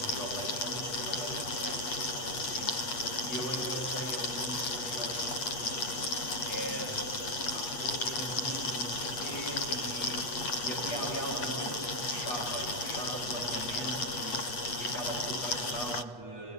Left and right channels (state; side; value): late; right; 8.2 ms